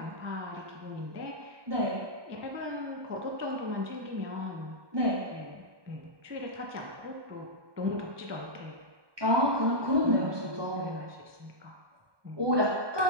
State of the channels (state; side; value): late; left; 1.2 ms